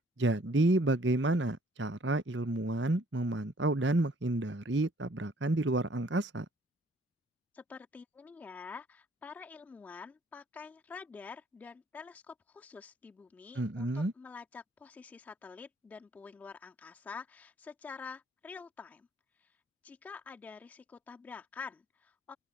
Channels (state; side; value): normal; both; correlation 0.61